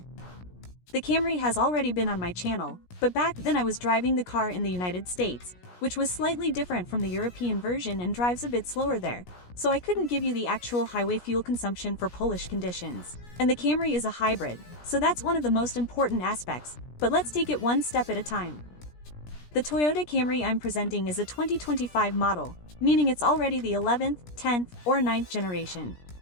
The Camry has already been on my channel, but back then I was driving the car in the United States, which was slightly different from the European version and drives a bit slower there, so I couldn't give you the actual highway fuel consumption for Polish conditions. And the Camry is a hybrid, so that's one of the most important aspects, but let's take it one step at a time. The Toyota Camry I'm presenting is a 2025 model, meaning it's already the 11th, 10th, or 9th generation.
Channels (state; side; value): late; right; 17 ms